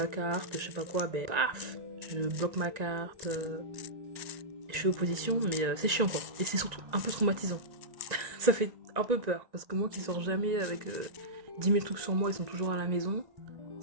carte, je sais pas quoi, ben, paf, je bloque ma carte, je fais opposition, mais c'est chiant quoi. Et c'est surtout un peu traumatisant. Ça fait un peu peur, parce que moi qui sors jamais avec 10 000 trucs sur moi, ils sont toujours à la maison,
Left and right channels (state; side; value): late; left; 1.9 ms